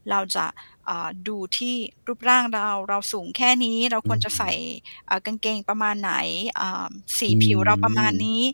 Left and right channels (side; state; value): both; inverted; correlation -1.00